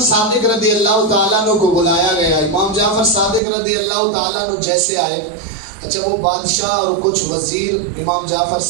صادق رضی اللہ تعالیٰ عنہ کو بلایا گیا. امام جعفر صادق رضی اللہ تعالیٰ عنہ جیسے آئے، اچھا وہ بادشاہ اور کچھ وزیر امام جعفر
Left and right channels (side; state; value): left; drops out; at 3.4 s